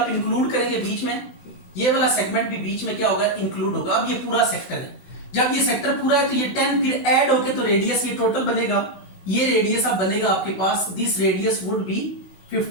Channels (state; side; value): late; right; 16 ms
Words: इंक्लूड करेंगे बीच में, ये वाला सेगमेंट भी बीच में क्या होगा इंक्लूड होगा। अब ये पूरा सेक्टर है, जब ये सेक्टर पूरा है तो ये 10 फिर ऐड होके तो रेडियस ये टोटल बनेगा, ये रेडियस अब बनेगा आपके पास, this radius would be